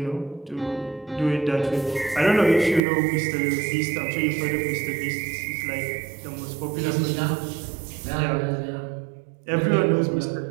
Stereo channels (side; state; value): left; drops out; at 2.8 s